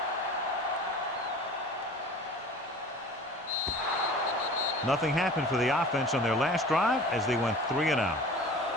Nothing happened for the offense on their last drive as they went 3 and out.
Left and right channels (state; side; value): normal; both; correlation 0.41